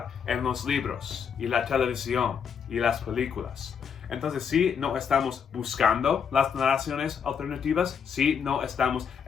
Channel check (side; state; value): right; quieter; 7.1 dB